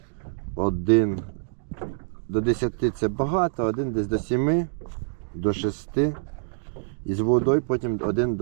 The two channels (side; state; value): left; silent; digital silence